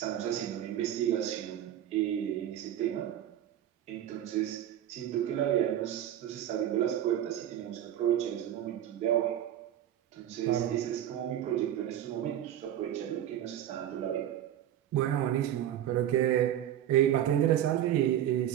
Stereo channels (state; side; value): quieter; left; 11.3 dB